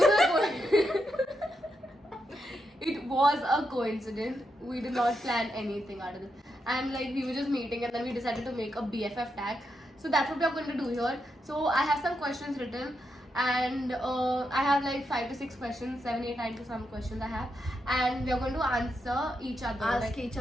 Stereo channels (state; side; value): normal; both; correlation 0.83